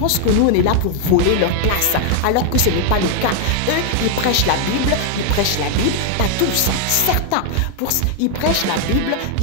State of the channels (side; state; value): both; different; correlation 0.00